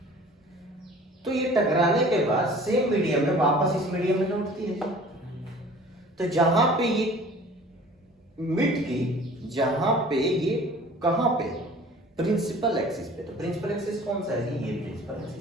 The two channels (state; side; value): normal; both; correlation 0.47